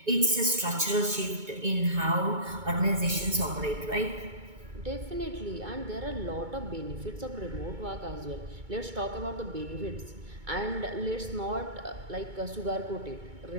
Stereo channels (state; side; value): late; left; 2.2 ms